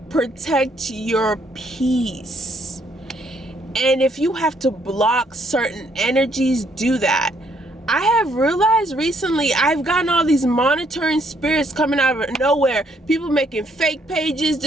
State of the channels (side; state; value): both; normal; correlation 0.69